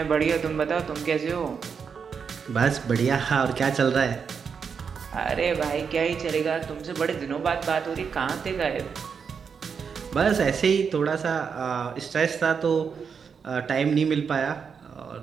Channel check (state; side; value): quieter; left; 6.3 dB